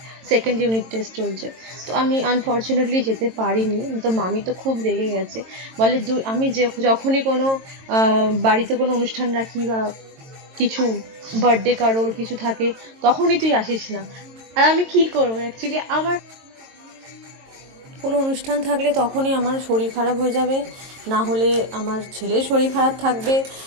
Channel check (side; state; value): left; late; 22 ms